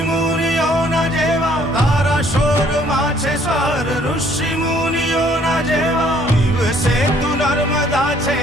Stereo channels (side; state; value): both; normal; correlation 0.62